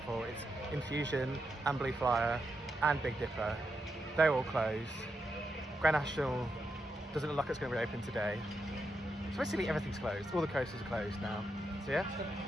4. It's Infusion and Blue Flyer and Big Dipper. They're all closed. Grand National doesn't look like it's going to reopen today. So basically everything's closed. All the coasters are closed now. So yeah,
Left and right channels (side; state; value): both; normal; correlation 0.84